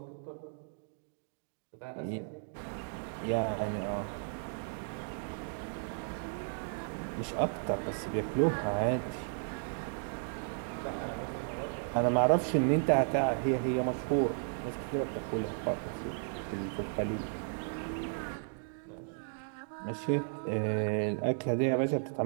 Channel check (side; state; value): left; silent; digital silence